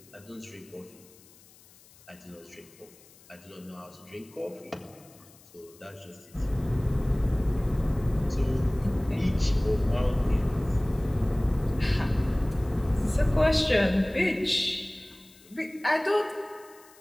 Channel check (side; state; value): left; noise; hiss, 25 dB below the sound